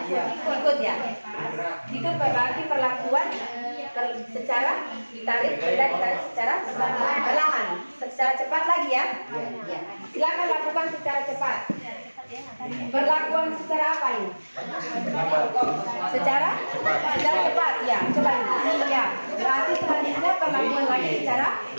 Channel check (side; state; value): both; inverted; correlation -1.00